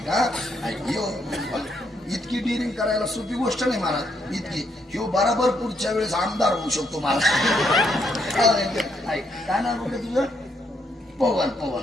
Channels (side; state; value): both; normal; correlation 0.75